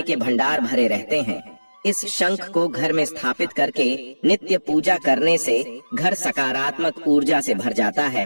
के भंडार भरे रहते हैं। इस शंख को घर में स्थापित करके नित्य पूजा करने से घर सकारात्मक ऊर्जा से भर जाता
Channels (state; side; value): inverted; both; correlation -1.00